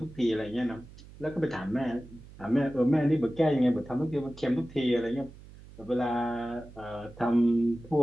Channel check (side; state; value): right; noise; hum, 19 dB below the sound